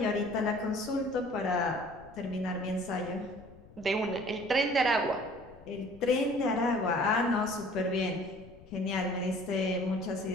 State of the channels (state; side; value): noise; left; rumble, 21 dB below the sound